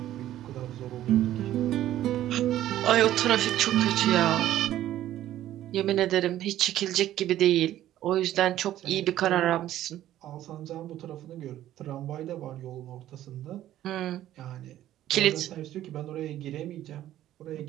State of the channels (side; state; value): left; quieter; 13.1 dB